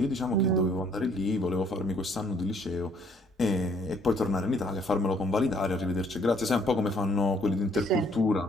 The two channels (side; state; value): both; normal; correlation 0.63